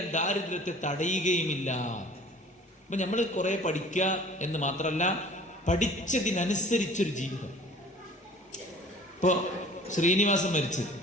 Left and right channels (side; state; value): both; normal; correlation 0.48